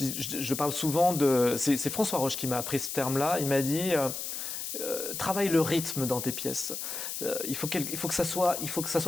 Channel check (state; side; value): noise; left; hiss, 5 dB below the sound